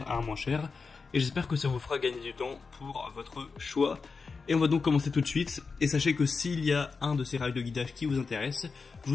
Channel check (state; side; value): quieter; right; 4.7 dB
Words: à un moins cher. Et j'espère que ça vous fera gagner du temps pour votre choix. Et on va donc commencer tout de suite. Et sachez que s'il y a un de ces rails de guidage qui vous intéresse, je